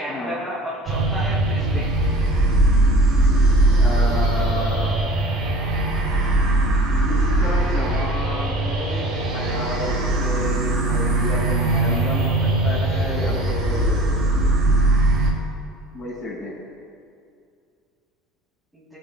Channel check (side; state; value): both; normal; correlation 0.43